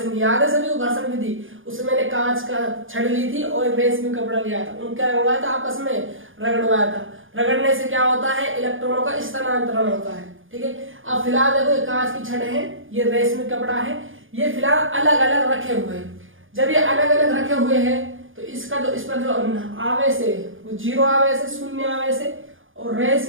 याद है सभी को, घर्षण विधि। उसमें मैंने कांच का छड़ ली थी और रेशमी कपड़ा लिया था, उनका रगड़वाया था, आपस में रगड़वाया था। रगड़ने से क्या होता है, इलेक्ट्रॉनों का स्थानांतरण होता है। ठीक है, अब फिलहाल देखो ये कांच की छड़ है, ये रेशमी कपड़ा है, ये फिलहाल अलग अलग रखे हुए हैं। जब ये अलग अलग रखे हुए हैं तो इसका जो इस पर जो आवेश है वो जीरो आवेश है, शून्य आवेश है, और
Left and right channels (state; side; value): late; left; 0.58 ms